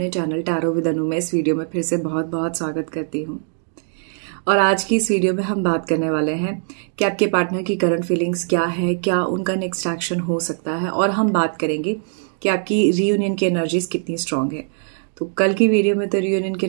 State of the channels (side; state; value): left; silent; digital silence